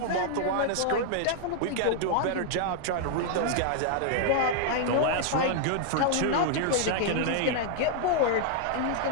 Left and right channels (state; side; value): different; both; correlation -0.01